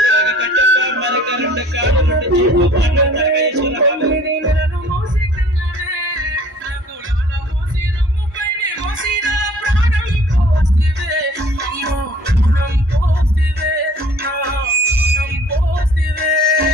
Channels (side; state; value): both; normal; correlation 0.51